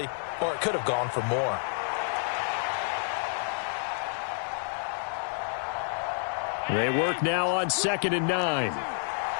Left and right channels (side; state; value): right; silent; 58 dB below the other